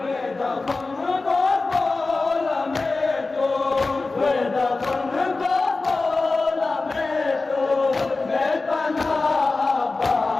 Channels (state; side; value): quieter; right; 3.6 dB